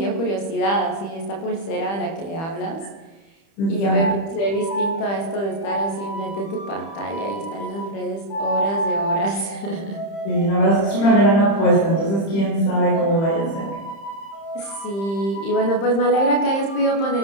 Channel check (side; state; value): right; late; 30 ms